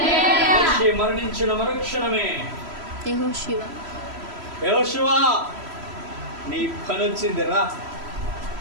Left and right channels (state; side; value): late; left; 3.1 ms